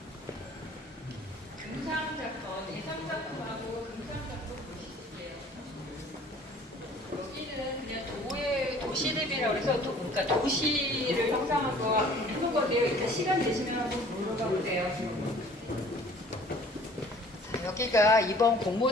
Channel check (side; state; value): both; normal; correlation 0.52